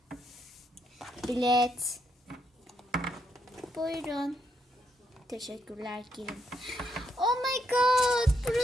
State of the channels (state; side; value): normal; both; correlation 0.77